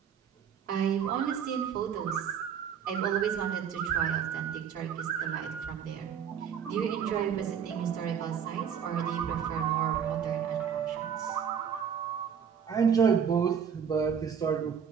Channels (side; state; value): left; quieter; 7.7 dB